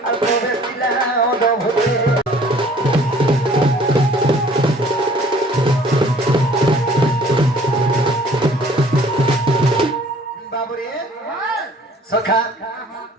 आर प्रवेशिला अद्भुते सखा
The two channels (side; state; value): both; normal; correlation 0.54